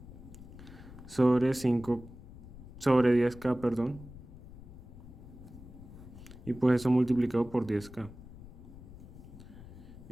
sobre 10K, perdón, y pues eso multiplicado por 10K.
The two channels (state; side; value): noise; left; rumble, 16 dB below the sound